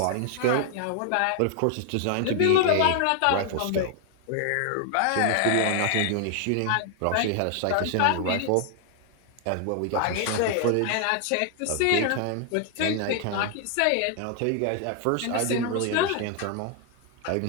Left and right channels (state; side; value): different; both; correlation 0.00